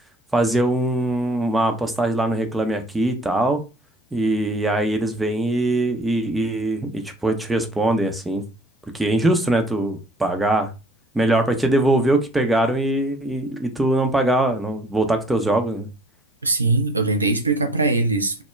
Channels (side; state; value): both; normal; correlation 0.52